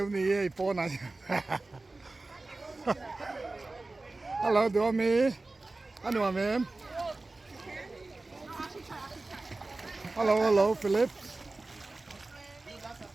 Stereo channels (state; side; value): quieter; left; 3.2 dB